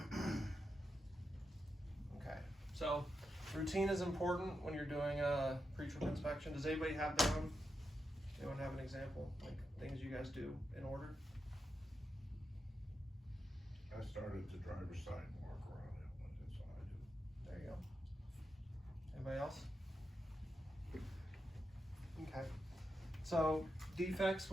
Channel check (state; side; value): normal; both; correlation 0.86